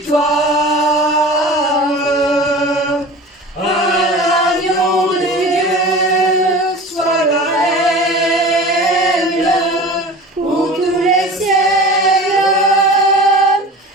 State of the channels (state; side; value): normal; both; correlation 0.37